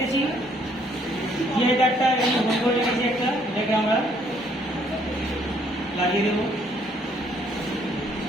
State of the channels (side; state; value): both; normal; correlation 0.65